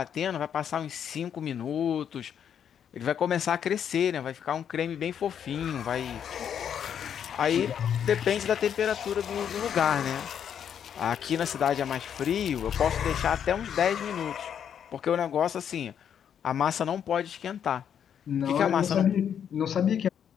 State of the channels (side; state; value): right; quieter; 8.6 dB